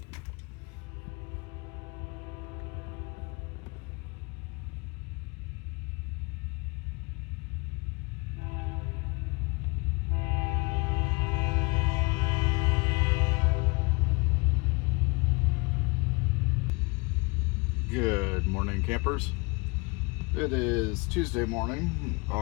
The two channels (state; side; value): quieter; right; 28.3 dB